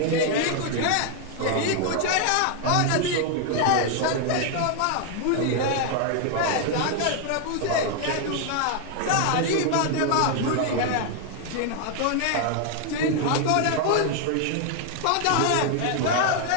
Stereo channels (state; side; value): different; both; correlation 0.00